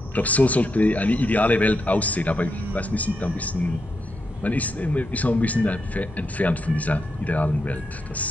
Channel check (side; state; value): both; normal; correlation 0.83